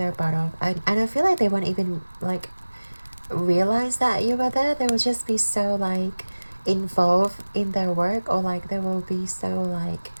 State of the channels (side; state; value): both; inverted; correlation -1.00